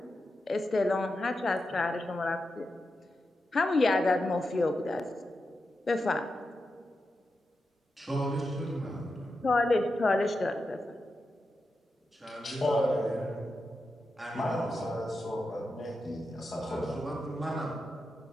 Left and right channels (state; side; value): normal; both; correlation 0.89